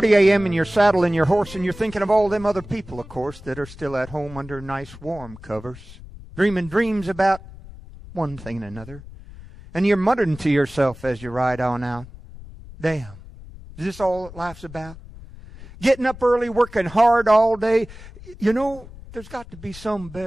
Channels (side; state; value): left; noise; rumble, 17 dB below the sound